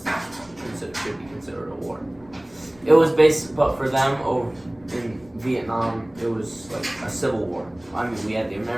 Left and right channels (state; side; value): noise; left; rumble, 27 dB below the sound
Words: should be considered a war. It was but for them in Vietnam, it was like a civil war. I mean, we had the